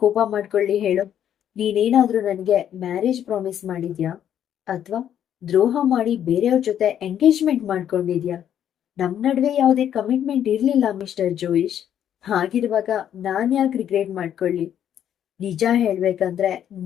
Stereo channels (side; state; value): right; quieter; 10.0 dB